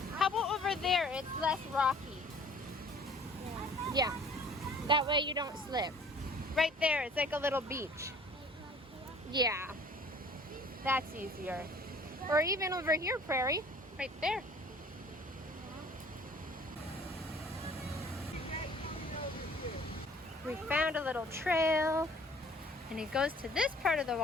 How about over there? It's less rocky. Yeah, that way you don't slip. Right there, it's like a little beach. Yeah, that's easier. Or even over here, Prairie, right there. We found a little trail, and it goes to this part of the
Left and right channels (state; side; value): normal; both; correlation 0.52